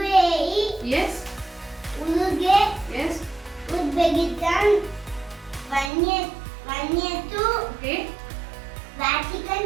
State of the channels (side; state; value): left; drops out; at 5.9 s